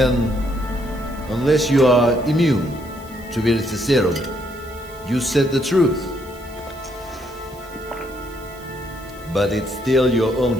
unless you are immune to Veritaserum, you said the truth. But it's still your own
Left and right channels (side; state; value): right; noise; hiss, 23 dB below the sound